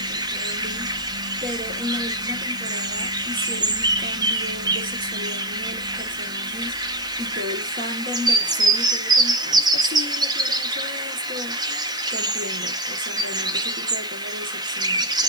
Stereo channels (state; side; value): noise; left; hiss, 19 dB below the sound